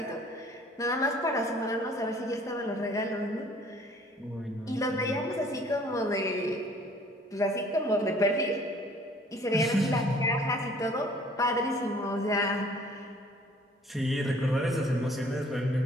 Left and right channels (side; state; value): both; normal; correlation 0.55